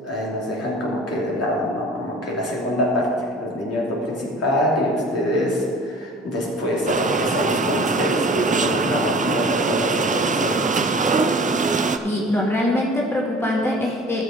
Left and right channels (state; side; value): normal; both; correlation 0.44